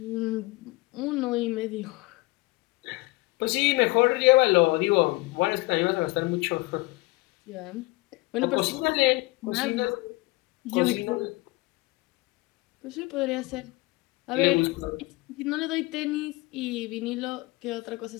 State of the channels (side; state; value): right; quieter; 22.3 dB